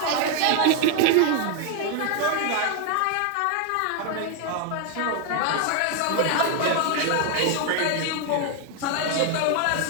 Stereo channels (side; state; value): both; different; correlation 0.01